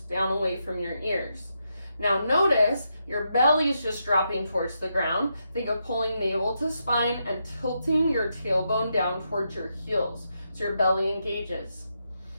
down away from your ears. Now notice your belly is just dropping towards the ground. Think of pulling navel to spine and tilting your tailbone down towards your heels so your belly engages.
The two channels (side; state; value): both; inverted; correlation -0.83